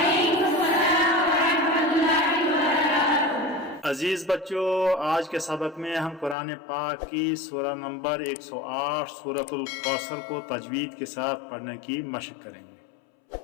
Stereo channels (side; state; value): right; drops out; at 6.4 s